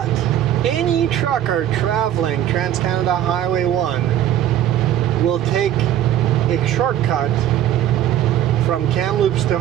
any trucker traveling Trans-Canada Highway 1 will take a shortcut from Kamloops to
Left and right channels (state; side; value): quieter; left; 11.3 dB